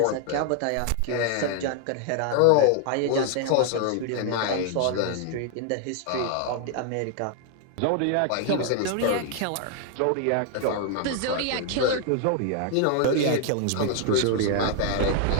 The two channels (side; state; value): both; different; correlation 0.00